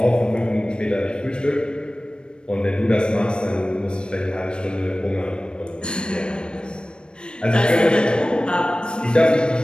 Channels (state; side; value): late; right; 0.054 ms